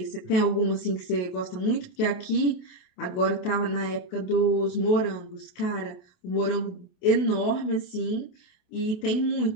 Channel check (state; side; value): late; right; 28 ms